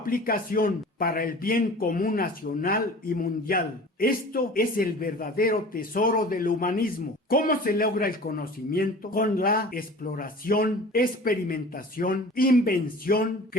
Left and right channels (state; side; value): normal; both; correlation 0.41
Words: para el bien común nacional y mundial. Esto es el verdadero tesoro del humanismo. ¿Cómo se logra el conocimiento? Con la exploración, experimentación, invención,